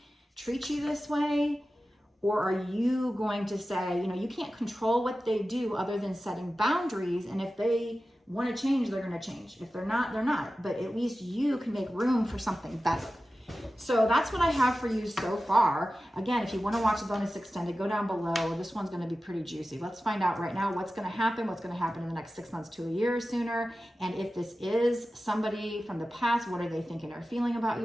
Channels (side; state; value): both; normal; correlation 0.94